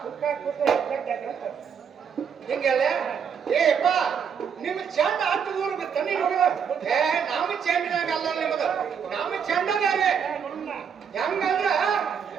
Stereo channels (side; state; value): left; quieter; 7.1 dB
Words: ಹಿಂಗೆಲ್ಲ ಏಪ್ಪ ನಿಮ್ ಚಂಡ ಹತ್ತು ಊರು ಬಿತ್ತ ಏ ನಾವು ಚೆಂಡಿನಾಗ ಅಲ್ಲ ನಿಮ್ಮದು ನಮ್ಮ ಚೆಂಡ ಬೇರೆ ಹೆಂಗಂದ್ರ